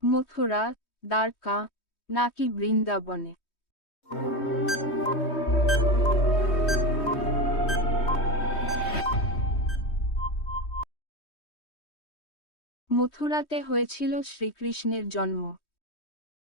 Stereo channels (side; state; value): right; late; 3.2 ms